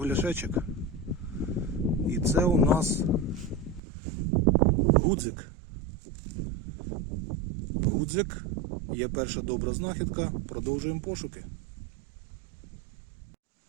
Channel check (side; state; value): left; drops out; at 3.8 s